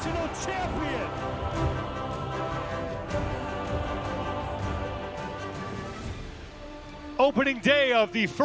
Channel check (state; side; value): identical; both; correlation 1.00